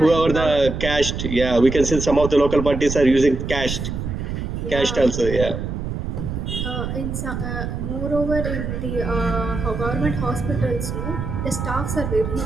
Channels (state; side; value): noise; right; rumble, 4 dB below the sound